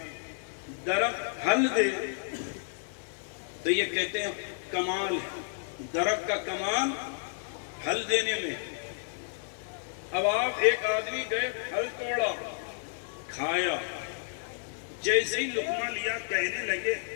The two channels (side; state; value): right; silent; digital silence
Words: درخت پھل دے تو یہ کہتے ہیں کمال ہے. درخت کا کمال پھل دینے میں. اب آپ ایک آدمی گئے پھل توڑا کھایا، جیسے ہی لقمہ لیا کہنے لگے